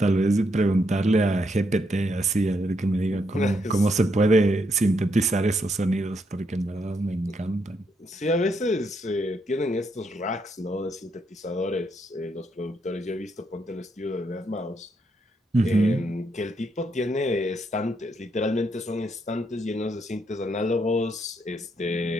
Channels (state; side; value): normal; both; correlation 0.77